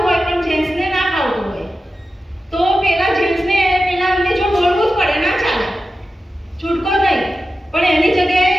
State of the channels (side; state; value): both; normal; correlation 0.92